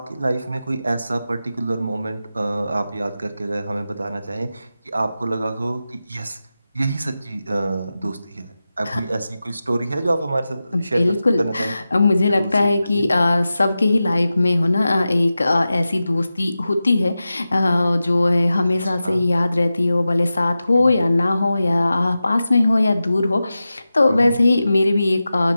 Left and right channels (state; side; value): inverted; both; correlation -0.93